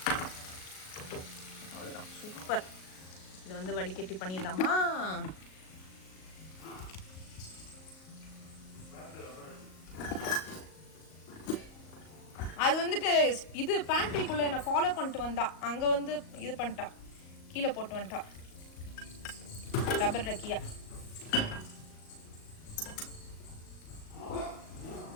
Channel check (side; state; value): right; late; 38 ms